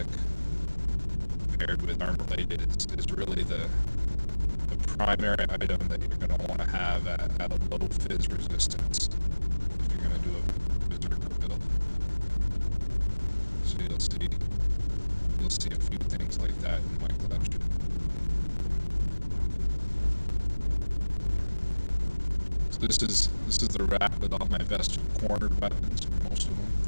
paired with armor plated is really the primary item that you're going to want to have at a low fizz resistance if you're going to do a berserker build. So you'll see a few things like that in my collection. So this is the rack with all my best cornered weapons, most of them.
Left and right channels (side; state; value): both; inverted; correlation -1.00